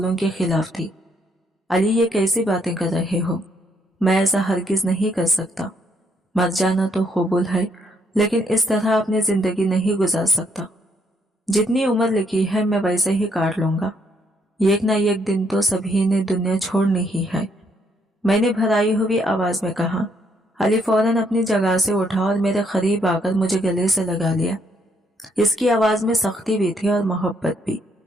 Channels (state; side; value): normal; both; correlation 0.71